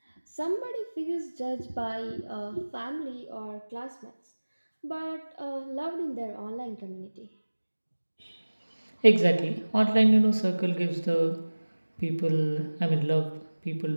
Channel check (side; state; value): both; inverted; correlation -1.00